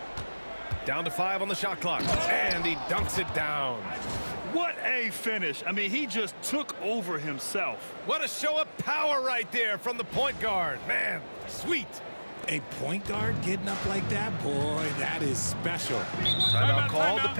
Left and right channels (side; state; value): both; inverted; correlation -1.00